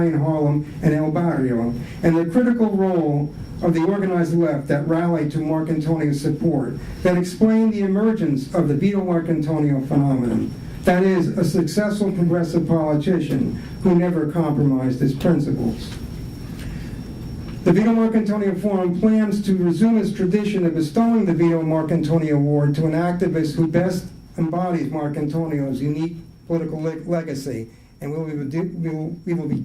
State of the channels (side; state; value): both; identical; correlation 1.00